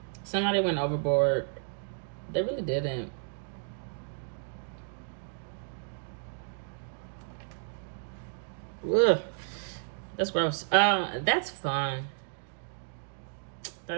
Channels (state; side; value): silent; left; digital silence